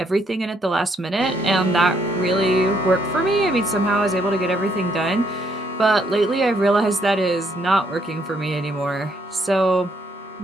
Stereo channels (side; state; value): both; normal; correlation 0.71